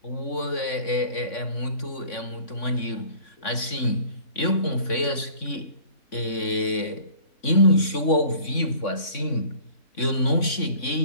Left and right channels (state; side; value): late; right; 3.6 ms